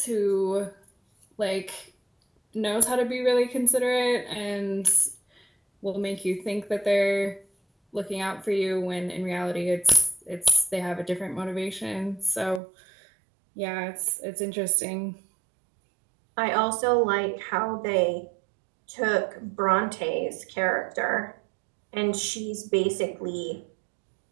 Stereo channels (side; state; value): left; drops out; at 12.6 s